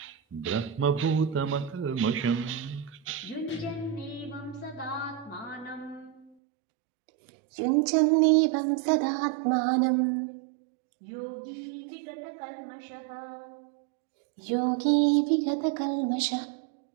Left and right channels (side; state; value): left; drops out; at 6.4 s